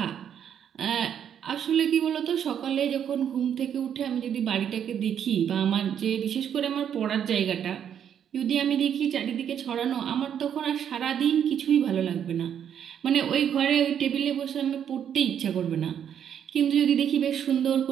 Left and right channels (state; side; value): quieter; left; 8.9 dB